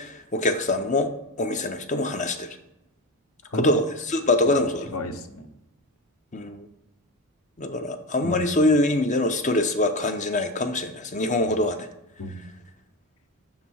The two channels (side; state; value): both; normal; correlation 0.20